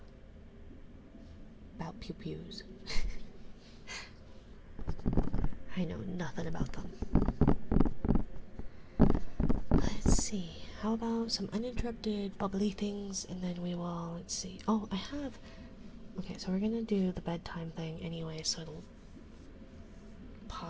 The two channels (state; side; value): identical; both; correlation 1.00